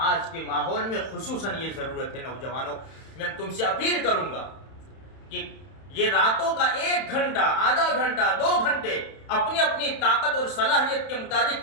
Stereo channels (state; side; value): late; right; 31 ms